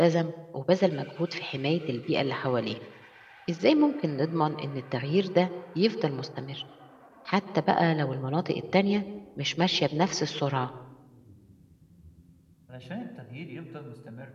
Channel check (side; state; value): both; identical; correlation 1.00